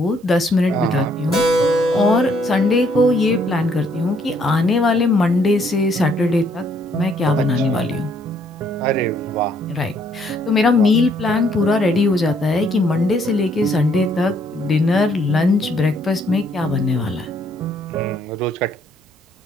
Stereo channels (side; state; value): both; normal; correlation 0.68